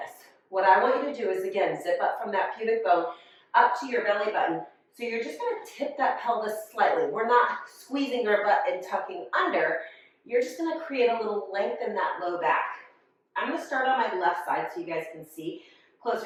What I want you to do is, again, zip up from that pubic bone up to your belly button. So you're just going to tip that pelvis slightly. We're not squeezing our butt and tucking under. You're just going to create a little length in that low back. I'm going to start on my left side so you guys can see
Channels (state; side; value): identical; both; correlation 1.00